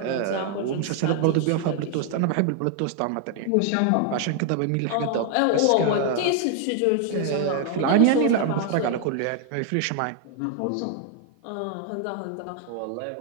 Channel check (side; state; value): both; different; correlation 0.00